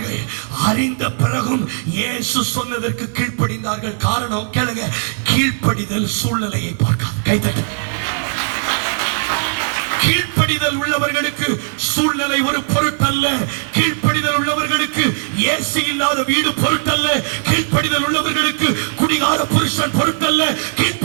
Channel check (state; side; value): silent; left; digital silence